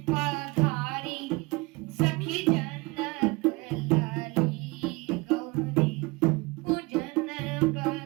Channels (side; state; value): left; quieter; 25.0 dB